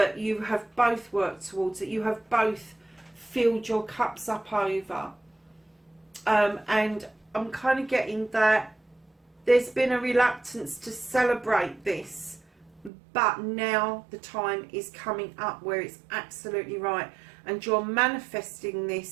you have both worked towards, that you have both filled your cups up over. And I'm kind of getting that there's been a reluctance to celebrate this, but now the time is coming up where it's absolutely right, and you're manifesting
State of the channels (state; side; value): drops out; left; at 12.9 s